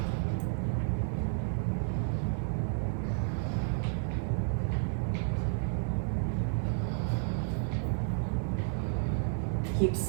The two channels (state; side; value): silent; left; digital silence